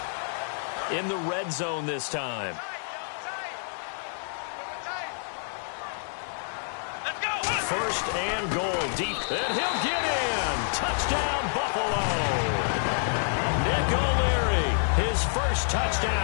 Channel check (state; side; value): silent; right; digital silence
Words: In the red zone this time. First and goal deep, and he'll get in. Touchdown, Buffalo. Nick O'Leary, his first